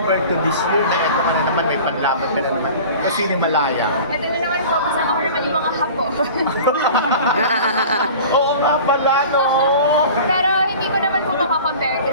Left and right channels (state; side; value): inverted; both; correlation -0.40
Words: to this year na ito ka na naman, may panlaban ka na naman kasi ni Malaya. Ito na naman po, kasama ko naman yung mga hapo. Oo nga pala, no? Pero hindi ko naman po makakompare